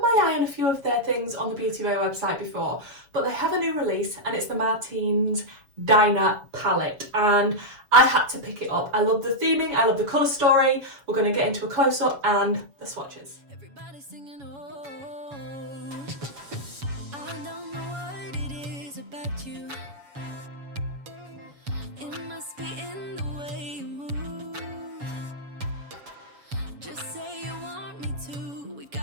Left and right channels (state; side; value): late; left; 7.1 ms